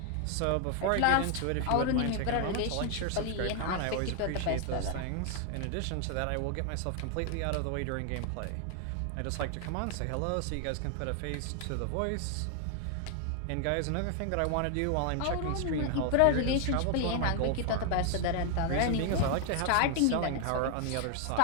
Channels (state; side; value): different; both; correlation 0.00